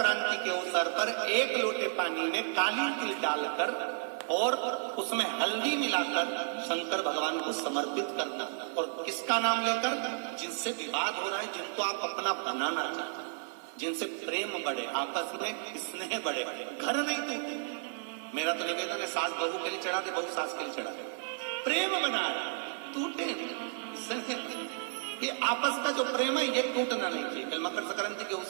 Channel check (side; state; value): left; silent; 56 dB below the other